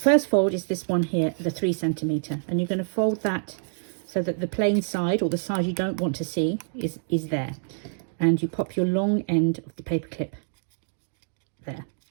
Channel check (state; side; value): silent; left; digital silence